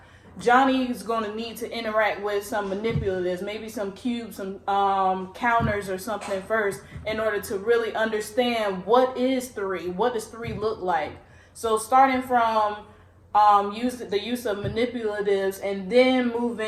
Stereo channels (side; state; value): both; identical; correlation 1.00